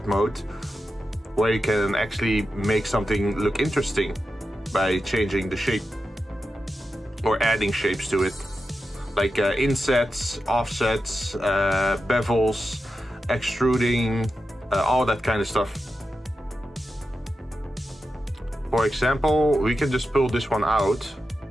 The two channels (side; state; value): both; normal; correlation 0.90